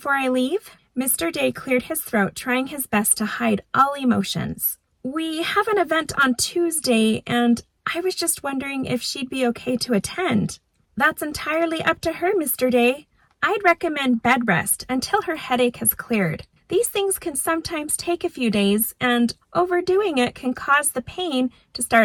I leave? Mr. Day cleared his throat, trying his best to hide all emotions. We have an event on Tuesday, and I was just wondering if she'd be okay to attend. That's entirely up to her, Mr. Day. I'd recommend bed rest until her headache has cleared. These things can sometimes take a few days, and overdoing it can cause the pain to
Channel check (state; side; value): identical; both; correlation 1.00